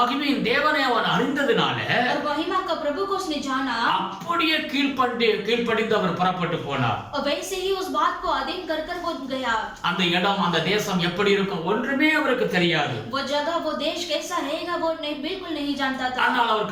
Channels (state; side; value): identical; both; correlation 1.00